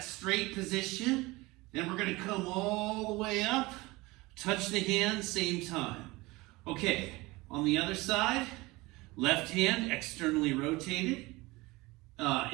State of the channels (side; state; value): left; quieter; 21.9 dB